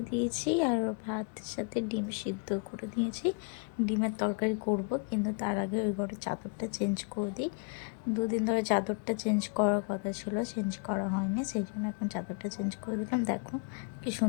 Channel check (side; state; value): right; quieter; 36.3 dB